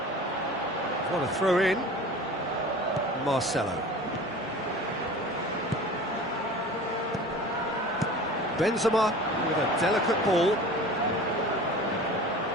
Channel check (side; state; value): both; normal; correlation 0.39